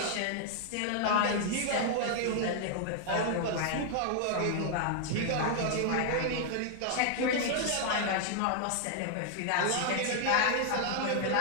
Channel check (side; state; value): both; different; correlation 0.00